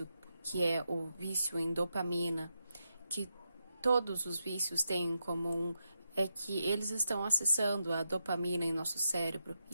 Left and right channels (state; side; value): inverted; both; correlation -0.85